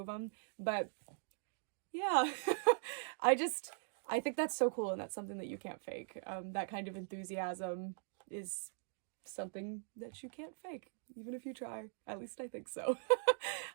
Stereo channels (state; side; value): silent; left; digital silence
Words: them. But yeah, I think that's so cool, and that's something that you can't fake. That kind of enthusiasm is something that you can't fake, even if you try. At least I think so.